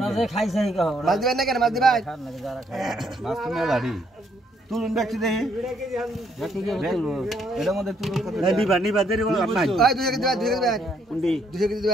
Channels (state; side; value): normal; both; correlation 0.70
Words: যে খাইছে কি কও মাছ দিবেন না কেন মাছ দিবেন খান না যারা খায় মাছ তো মেলাড়ি তুলুন দেখছি দেখি দেখি কি তুলু এর মধ্যে তুলু কত না নিবা দেরি বল নাই ওই 200 কেজি দিবেন 200 কেজি দিবেন কোনটি 200 কেজি